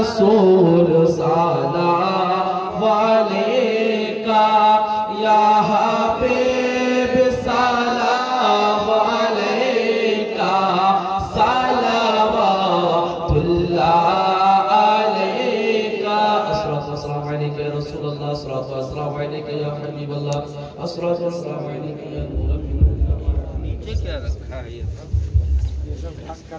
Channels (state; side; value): identical; both; correlation 1.00